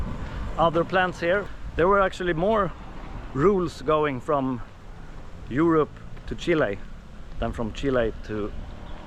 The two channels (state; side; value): identical; both; correlation 1.00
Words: other plants here. There were actually more rules going from Europe to Chile than from Chile to